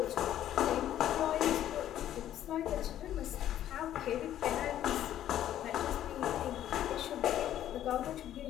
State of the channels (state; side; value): quieter; right; 11.7 dB